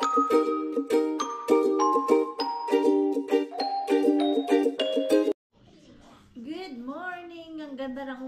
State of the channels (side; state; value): both; identical; correlation 1.00